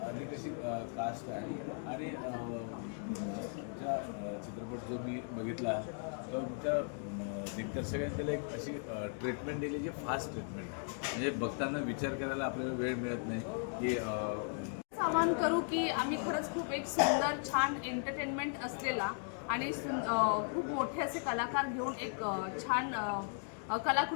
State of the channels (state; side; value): silent; right; 53 dB below the other